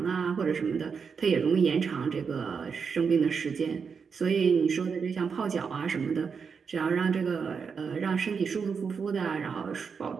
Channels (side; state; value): left; quieter; 5.9 dB